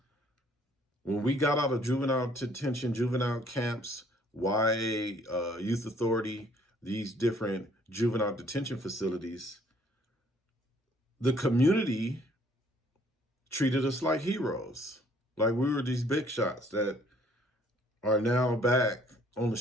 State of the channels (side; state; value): both; normal; correlation 0.61